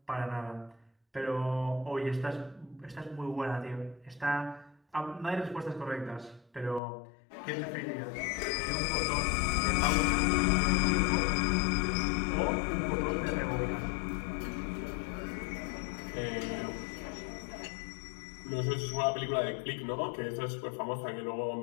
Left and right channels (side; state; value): right; drops out; at 6.8 s